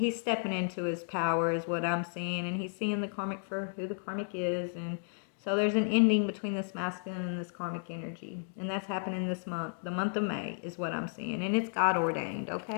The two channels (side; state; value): right; silent; digital silence